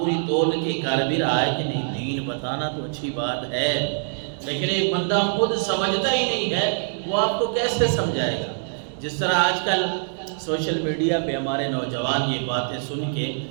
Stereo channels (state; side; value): silent; left; 61 dB below the other